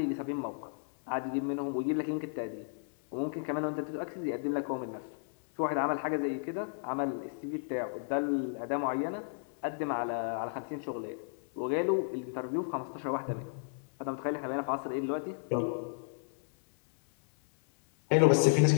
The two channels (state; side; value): silent; right; 56 dB below the other